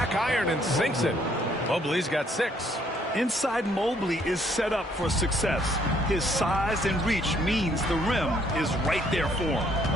iron and sinks it. Mobley's got 6. Inside Mobley is set up for success. His size and reach means the rim is right there for him.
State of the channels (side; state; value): both; normal; correlation 0.66